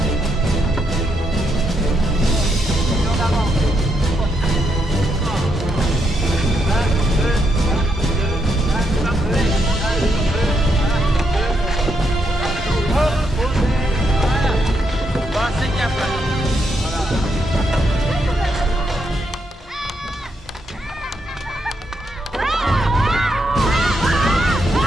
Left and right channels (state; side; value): normal; both; correlation 0.79